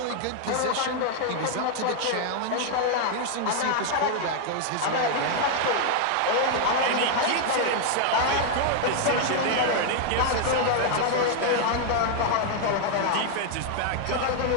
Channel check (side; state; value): both; different; correlation 0.00